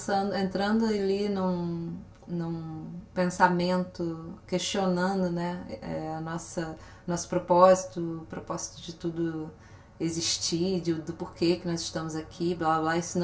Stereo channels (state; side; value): identical; both; correlation 1.00